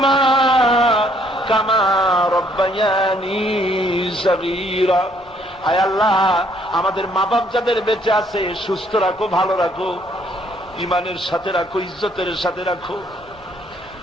কামা রব্বায়ানি সগীরা। আয় আল্লাহ আমাদের মা বাপ যাদের বেঁচে আছে সুস্থ রাখো, ভালো রাখো, ইমানের সাথে রাখো, ইজ্জতের সাথে রাখো।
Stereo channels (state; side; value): normal; both; correlation 0.66